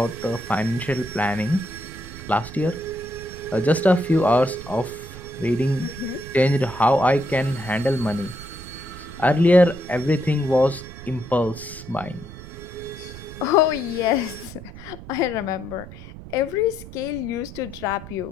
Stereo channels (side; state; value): right; noise; rumble, 14 dB below the sound